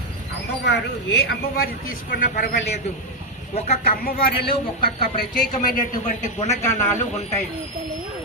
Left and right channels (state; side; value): normal; both; correlation 0.02